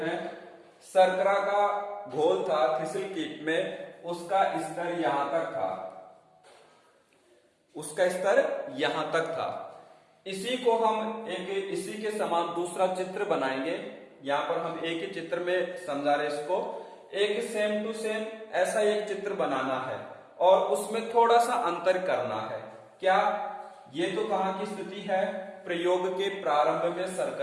शर्करा का घोल था थिसिल कीप में, उसका स्तर यहां तक था, उसका स्तर यहां तक था। इसी को हम इसी के समान दूसरा चित्र बनाएंगे। यहां पर हम एक ही चित्र में समझा रहे इसको। एक सेम टू सेम ऐसा एक चित्र बनाना है और उसमें थोड़ा सा अंतर करना है। क्या? ये तो कहां की स्थिति है? प्रयोग के प्रारंभ में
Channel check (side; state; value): both; identical; correlation 1.00